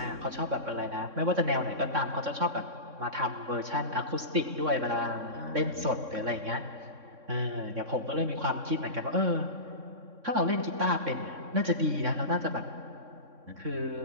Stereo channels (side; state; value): left; late; 3.6 ms